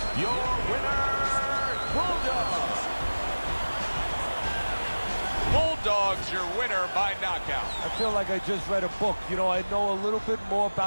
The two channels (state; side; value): inverted; both; correlation -1.00